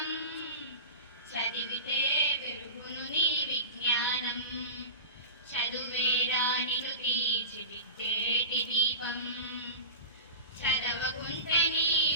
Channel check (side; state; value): both; inverted; correlation -0.31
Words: చదివితే పెరుగును నీ విజ్ఞానం. చదువేరా నిన్ను తీర్చిదిద్దేటి దీపం, చదవకుంటే నీ